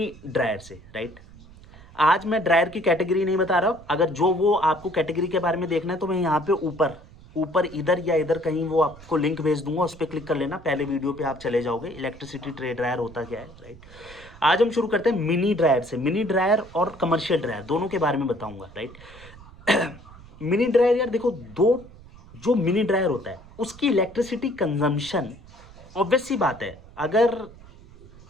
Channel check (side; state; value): right; noise; rumble, 21 dB below the sound